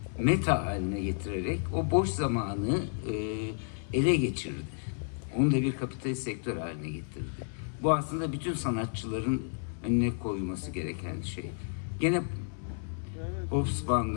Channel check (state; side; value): silent; right; 57 dB below the other